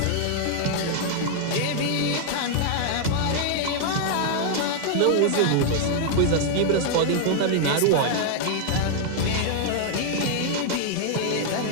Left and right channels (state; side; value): different; both; correlation 0.00